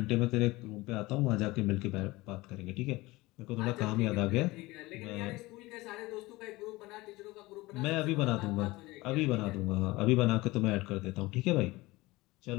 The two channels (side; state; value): right; quieter; 20.8 dB